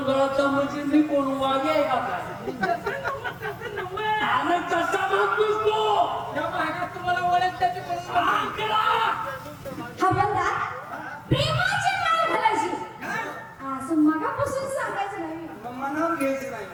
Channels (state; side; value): identical; both; correlation 1.00